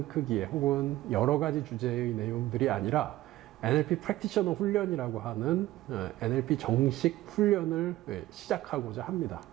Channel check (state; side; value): quieter; left; 16.0 dB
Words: 크기의 혹은 여러 가지 주제의 내용들이 아니라 NLP 프랙티셔너 훈련이라고 하는 NLP 정식 훈련을 시작하고자 합니다.